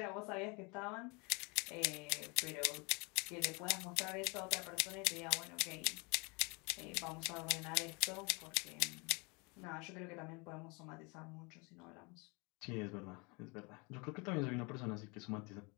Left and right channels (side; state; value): right; quieter; 29.8 dB